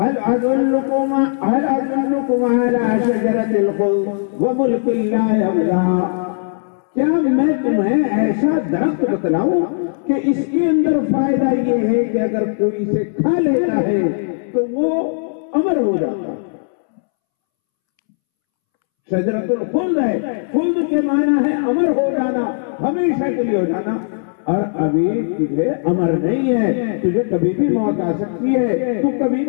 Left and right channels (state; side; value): silent; right; 67 dB below the other